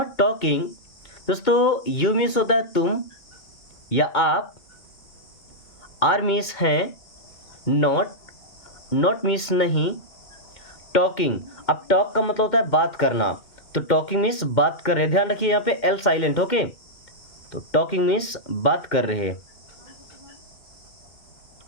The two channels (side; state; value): right; late; 2.1 ms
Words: talking, दोस्तों यू मीन्स होता है तुम या आप, आर मीन्स है, नॉट, नॉट मीन्स नहीं, टॉकिंग, अब टॉक का मतलब होता है बात करना, तो टॉकिंग मीन्स बात कर रहे, ध्यान रखिए यहाँ पे एल साइलेंट। ओके, तो टॉकिंग मीन्स बात कर रहे।